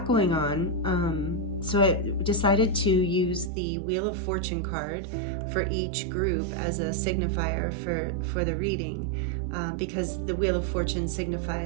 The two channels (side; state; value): left; drops out; at 3.5 s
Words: going on. So I decided to use the Wheel of Fortune card for each group as a signifier for the reading, because the Wheel of Fortune